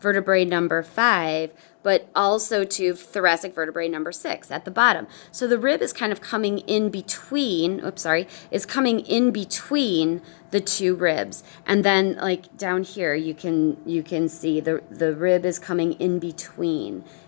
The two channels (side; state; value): right; silent; digital silence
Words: number 5, but also to thoracic vertebrae number 6 at the bottom. So the rib is kind of coming in between, is coming in between the two ribs. And then like down here, you can see the rib is coming in between